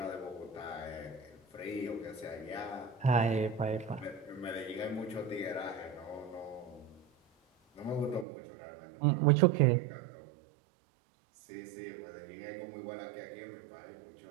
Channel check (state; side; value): drops out; left; at 8.2 s